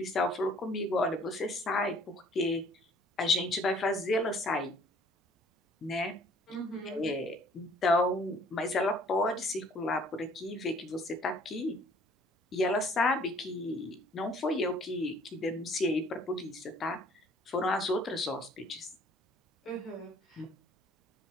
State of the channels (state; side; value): normal; both; correlation 0.57